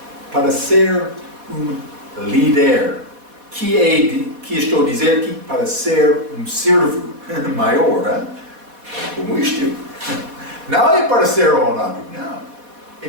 para ser um líder. Que estou a dizer que para ser um servo maior, hein? Como isto. Não é para ser honrado, não. É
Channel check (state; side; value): late; left; 4.1 ms